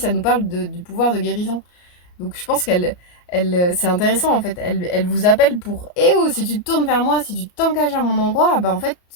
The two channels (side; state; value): right; late; 34 ms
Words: nous parle du pouvoir de guérison. Donc je pense c'est intéressant en fait. Elle vous appelle pour eh oh, si tu te tournes vers moi, si tu t'engages à mon endroit, bah en fait,